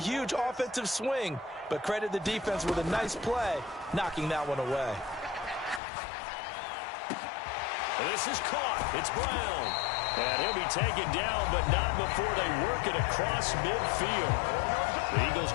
offensive swing. But credit the defense with a nice play, knocking that one away. This is caught. It's Brown. And he'll be taken down, but not before they work it across midfield. The Eagles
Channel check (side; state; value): right; drops out; at 5.8 s